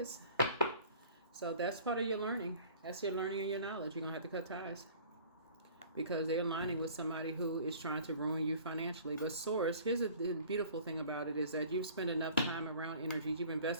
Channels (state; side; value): inverted; both; correlation -0.49